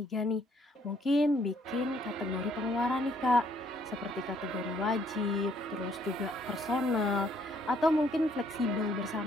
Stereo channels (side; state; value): both; normal; correlation 0.66